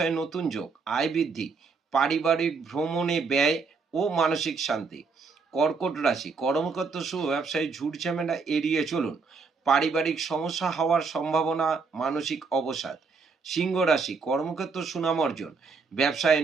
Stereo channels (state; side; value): quieter; left; 4.7 dB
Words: নতুন যোগ, আয় বৃদ্ধি, পারিবারিক ভ্রমণে ব্যয় ও মানসিক শান্তি। কর্কট রাশি, কর্মক্ষেত্র শুভ, ব্যবসায় ঝুট ঝামেলা এড়িয়ে চলুন, পারিবারিক সমস্যা হওয়ার সম্ভাবনা, মানসিক অবসাদ। সিংহ রাশি, কর্মক্ষেত্র সুনাম অর্জন, ব্যবসায়